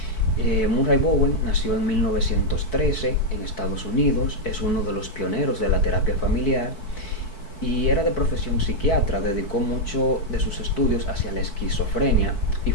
Murray-Bowen nació en 1913 en Estados Unidos, es uno de los pioneros de la terapia familiar y era de profesión psiquiatra. Dedicó mucho de sus estudios hacia la esquizofrenia y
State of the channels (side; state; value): right; late; 4.6 ms